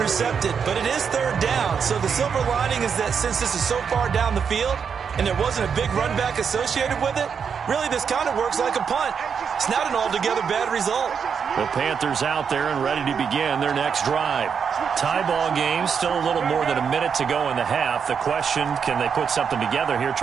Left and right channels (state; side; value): quieter; left; 6.7 dB